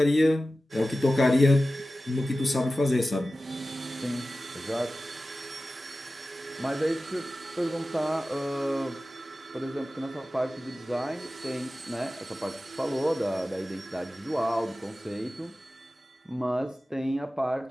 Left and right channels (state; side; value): normal; both; correlation 0.95